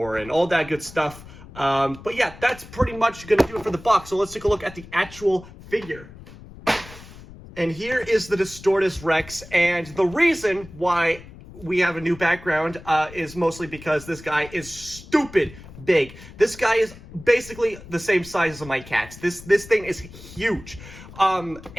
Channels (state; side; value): noise; left; rumble, 17 dB below the sound